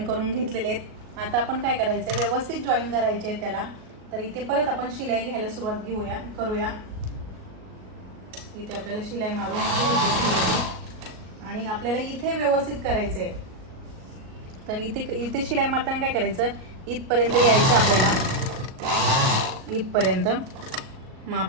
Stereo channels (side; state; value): left; late; 38 ms